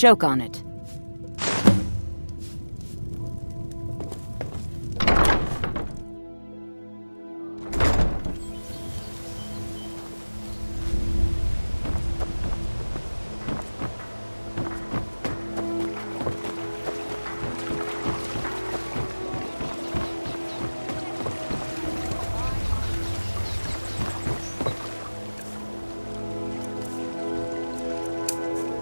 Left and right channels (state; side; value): inverted; both; correlation -1.00